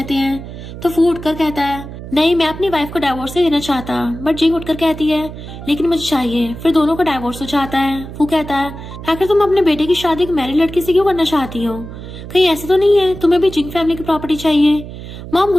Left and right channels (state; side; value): noise; right; hum, 12 dB below the sound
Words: हैं तो फू उठकर कहता है नहीं मैं अपनी वाइफ को डिवोर्स नहीं देना चाहता। बट जिंग उठकर कहती है लेकिन मुझे चाहिए। फिर दोनों को डिवोर्स हो जाता है। फू कहता है आखिर तुम अपने बेटे की शादी एक मैरिड लड़की से क्यों करना चाहती हो? कहीं ऐसे तो नहीं है तुम्हें भी जिंग फैमिली की प्रॉपर्टी चाहिए? मॉम